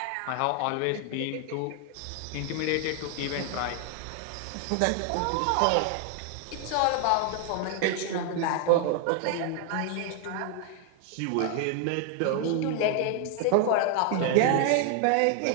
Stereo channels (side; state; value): both; different; correlation 0.00